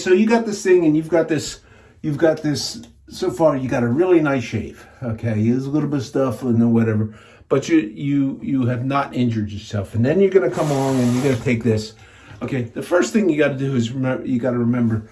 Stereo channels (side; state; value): both; identical; correlation 1.00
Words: you got this thing, and you've got this. So far, you got a really nice shave. Okay, there's a little bit of stuff and whatever, but you have not injured yourself. And then you're gonna come along and you're gonna take this. Okay, the first thing you got to do is remember.